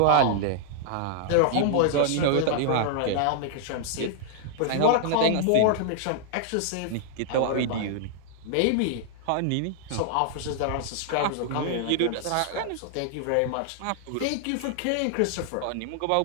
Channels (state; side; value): different; both; correlation -0.01